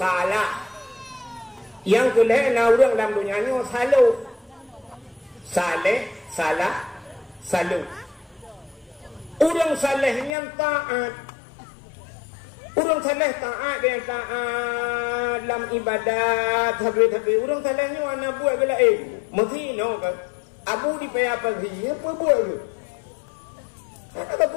salah. Yang kedua na urang dalam dunianya salah. Saleh, salah, salah. Urang salehnya taat. Urang saleh taat dia taat dalam ibadat habis-habis. Urang salehnya ana buat bela mesti no kan. Abu di payah pagi apa buat tu? Ada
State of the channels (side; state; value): right; drops out; at 10.4 s